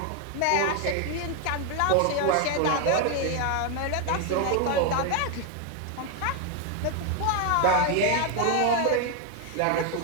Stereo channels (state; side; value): different; both; correlation 0.01